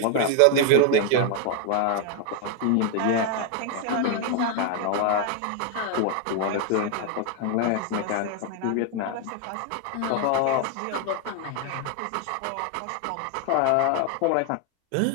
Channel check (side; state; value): both; different; correlation 0.00